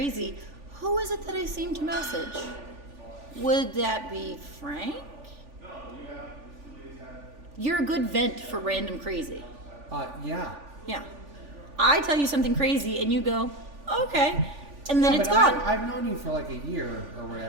who is it that I seem to message? Would that be Frank? You're a good vent for random crazy. Yeah. Yeah. I tell you something crazy and you go, okay. And then Yeah, it's but gone. I've known you for like a year or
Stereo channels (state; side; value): late; left; 3.4 ms